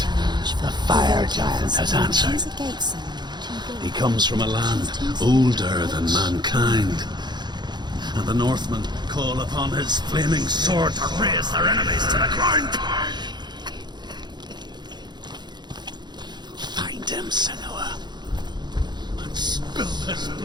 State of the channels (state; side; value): late; left; 0.21 ms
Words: the fire giant, has answered. Choose a gate, Senua. He comes from a land older than mankind. And the Northmen call upon his flaming sword to raze their enemies to the ground. Find him, Senua, and spill his